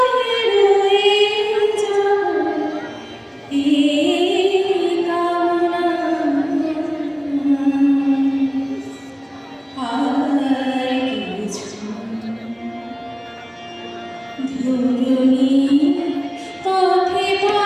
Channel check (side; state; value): both; identical; correlation 1.00